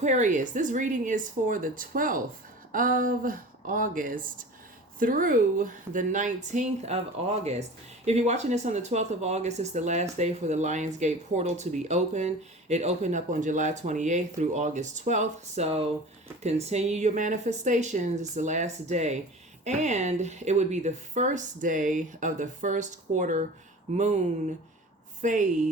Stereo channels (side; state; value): both; normal; correlation 0.38